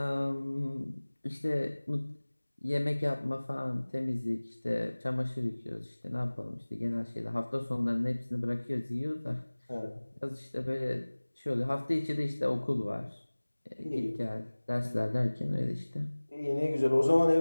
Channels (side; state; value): both; inverted; correlation -1.00